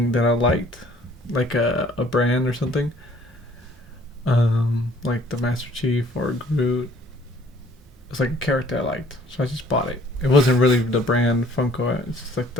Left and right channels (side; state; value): both; normal; correlation 0.57